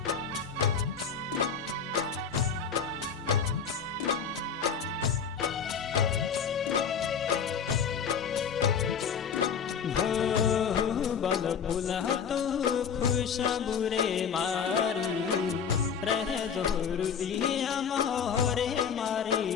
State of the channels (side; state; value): right; quieter; 6.7 dB